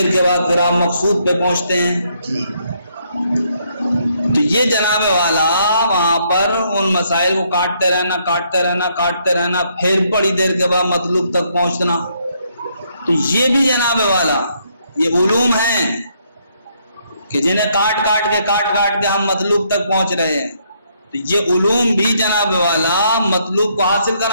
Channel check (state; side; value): inverted; both; correlation -0.72